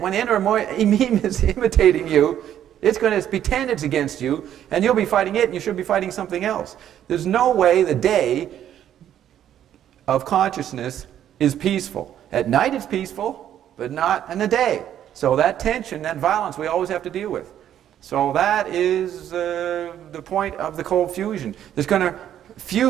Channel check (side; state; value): left; quieter; 10.7 dB